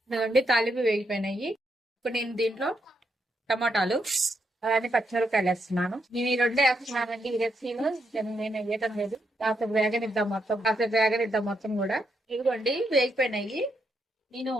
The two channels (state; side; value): normal; both; correlation 0.79